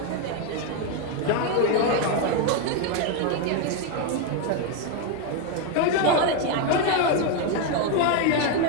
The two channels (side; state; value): both; different; correlation 0.02